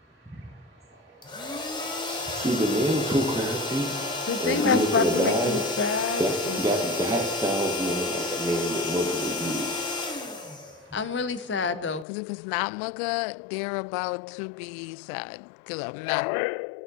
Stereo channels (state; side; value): drops out; right; at 12.1 s